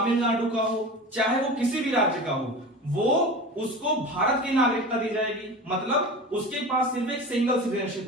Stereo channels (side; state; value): both; normal; correlation 0.32